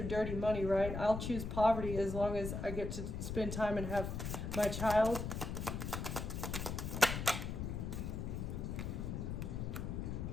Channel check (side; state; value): left; noise; rumble, 4 dB below the sound